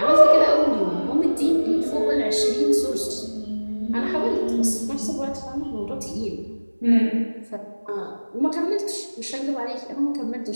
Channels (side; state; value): both; inverted; correlation -1.00